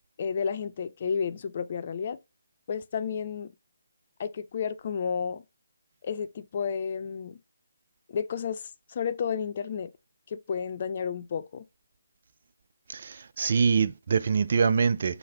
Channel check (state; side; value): inverted; both; correlation -0.77